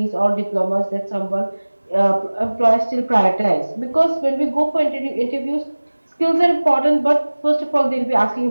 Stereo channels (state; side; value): inverted; both; correlation -1.00